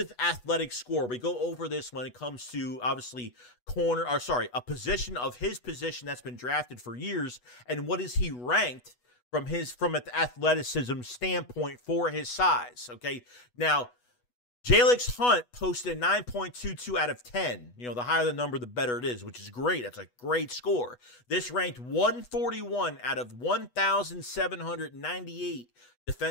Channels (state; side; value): late; right; 8.2 ms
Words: athletic score. We go over this when it comes to, obviously, a position of his position that's been drafted for years, and what is he ranked from an athleticism standpoint for his size. Okay, now Jalyx Hunt posted a 9.22 out of 10. The higher the number, the better it is, which is great. That's a great score. This ranked 141 out of 1,798